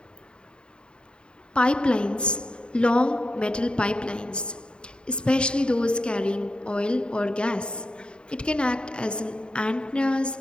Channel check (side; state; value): right; late; 0.051 ms